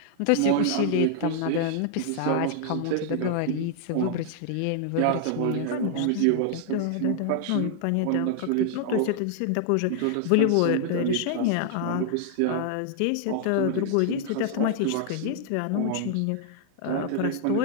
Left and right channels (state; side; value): different; both; correlation 0.00